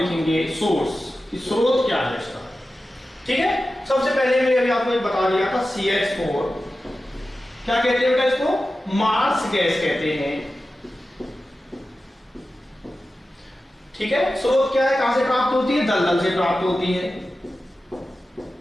सोर्स, कि स्रोत क्या है इसका। ठीक है, सबसे पहले मैंने अभी आपको बता दिया था CH4 क्या कहते हैं बेटा? इसको मार्स गैस कहते हैं। ठीक है, स्रोत क्या है? कहां से प्राप्त होती है? दलदल से प्राप्त होती है,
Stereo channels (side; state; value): both; normal; correlation 0.94